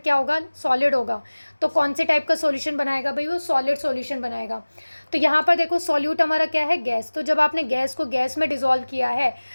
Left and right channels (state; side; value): inverted; both; correlation -1.00